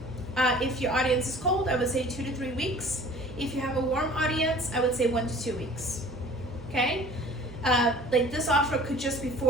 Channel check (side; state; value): both; normal; correlation 0.48